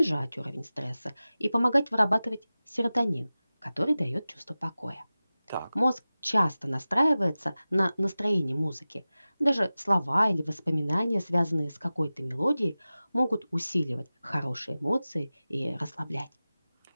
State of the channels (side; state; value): both; inverted; correlation -0.96